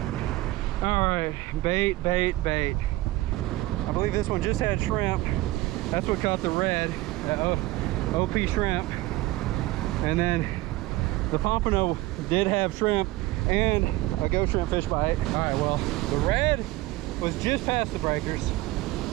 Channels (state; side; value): quieter; left; 18.5 dB